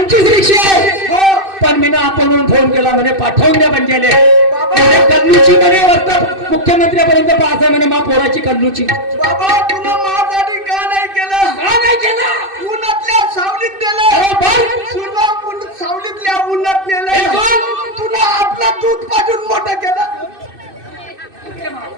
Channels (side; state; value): left; late; 2.6 ms